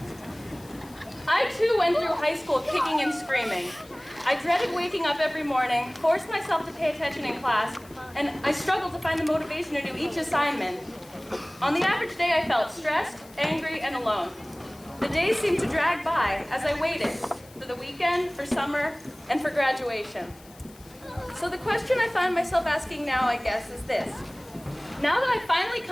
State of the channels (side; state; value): left; noise; hiss, 24 dB below the sound